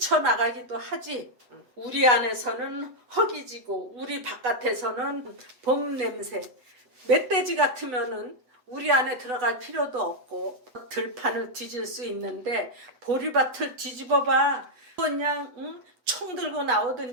하지. 우리 안에서는 허기지고 우리 바깥에서는 봄 냄새. 멧돼지 같으면은 우리 안에 들어갈 필요도 없고 들판을 뒤질 수 있는데 보리밭을 뒤집어봐. 그냥 총 들고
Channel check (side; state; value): left; late; 8.0 ms